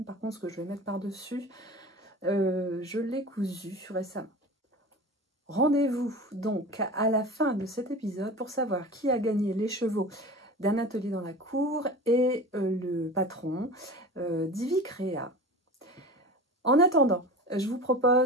Par contre, ce que je vais mettre par-dessus, je l'ai cousu récemment. Rendez-vous donc à la fin de cet épisode pour savoir qui a gagné les chevaux d'un atelier dans la cour et le patron d'Ivy Créa. En attendant, je vous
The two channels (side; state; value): both; normal; correlation 0.34